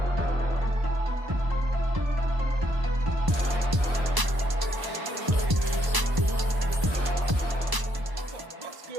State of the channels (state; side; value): late; left; 1.0 ms